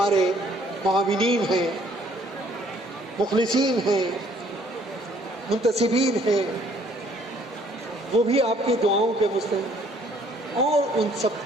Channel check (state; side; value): normal; both; correlation 0.61